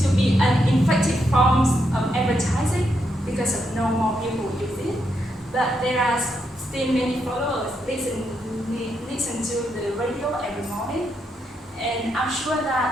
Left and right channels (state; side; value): normal; both; correlation 0.80